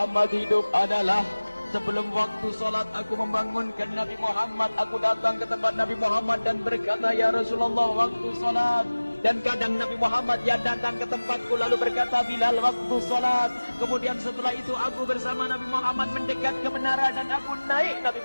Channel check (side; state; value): both; inverted; correlation -1.00